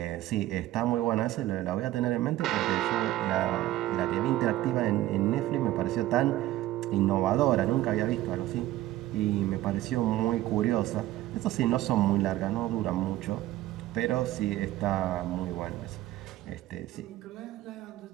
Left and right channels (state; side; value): quieter; left; 15.1 dB